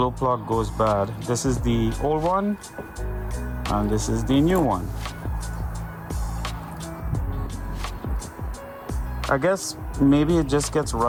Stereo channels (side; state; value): both; identical; correlation 1.00